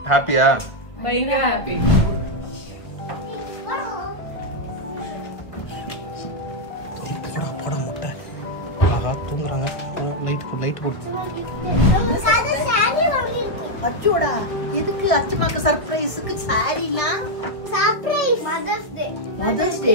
ஹாப்பியா? பயங்கர ஹாப்பி. போட முட்டை ஆஹா தூங்குறாங்க. லைட் போடு. அச்சோடா, எதுக்கு அச்சமாக்கு சர்ப்ரைஸ்க்கு சாரினா? சர்ப்ரைஸ் மதர்ஸ் டே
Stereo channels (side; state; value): right; late; 1.2 ms